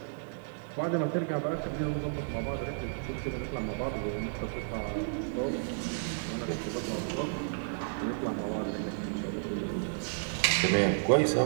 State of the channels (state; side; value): silent; left; digital silence